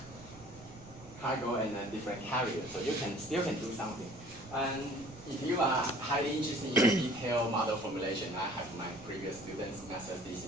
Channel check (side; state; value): right; noise; rumble, 19 dB below the sound